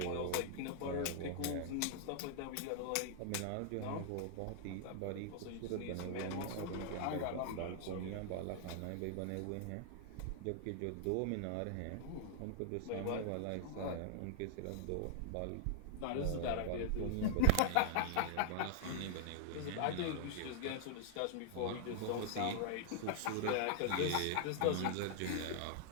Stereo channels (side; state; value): both; different; correlation 0.00